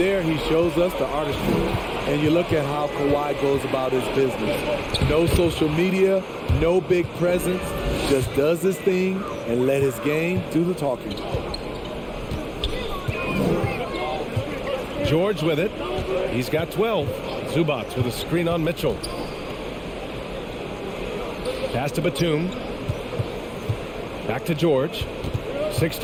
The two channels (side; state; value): both; identical; correlation 1.00